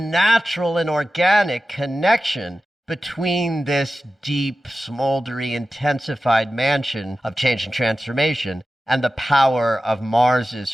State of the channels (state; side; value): normal; both; correlation 0.94